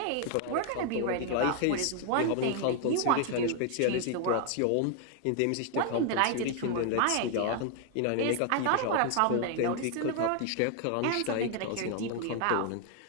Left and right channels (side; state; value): both; different; correlation 0.00